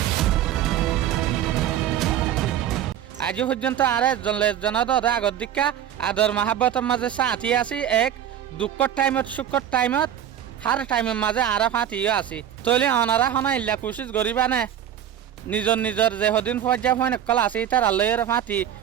আজ পর্যন্ত আরে জনদ আগর দিকা আদর মহাব্বতের মাঝে সাথী আছি এক দুঃখর টাইমত সুখর টাইমত হার টাইমের মাঝে আরা ফাঁতিও আছি তৈলে অনারা হনা ইল্লা কোশিশ করিবা নে নিজর যে হদিন পর্যায় হয় নকল আছে তার আল্লাহর ফাঁতি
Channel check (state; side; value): quieter; left; 10.2 dB